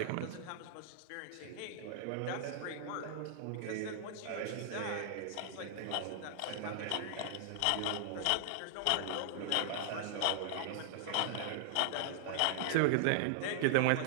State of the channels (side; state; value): both; different; correlation -0.01